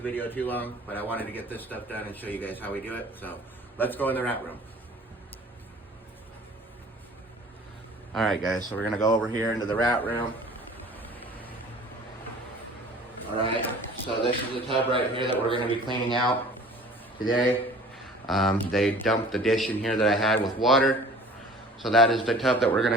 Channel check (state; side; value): normal; both; correlation 0.47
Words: video too long, but I wanted to get this stuff done and show you guys how we do it. So let's go in the rat room. All right, guys, so we're going to go over here into the rat room. All right, so this is the tub right here that we're going to be cleaning out today. They dumped the dish in here that I had with water. So that is the tub that we're